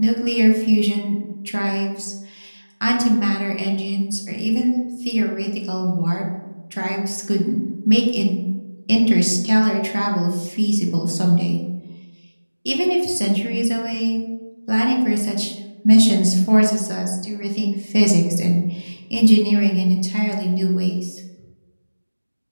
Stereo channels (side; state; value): both; inverted; correlation -1.00